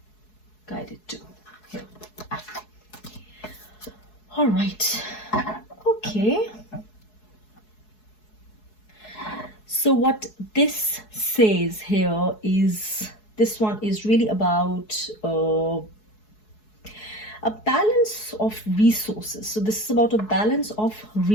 guided to. Here. All right. Okay. So what this says here is, this one is really about a balance of resources. So this is about a balance of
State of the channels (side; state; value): right; late; 4.7 ms